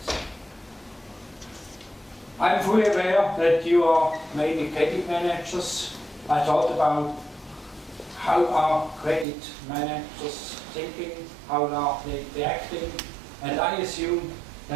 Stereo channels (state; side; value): drops out; left; at 9.2 s